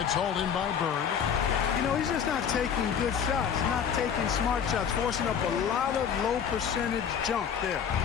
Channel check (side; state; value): right; quieter; 7.7 dB